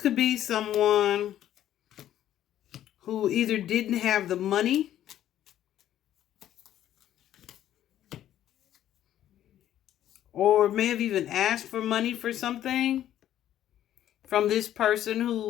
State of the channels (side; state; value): right; quieter; 11.8 dB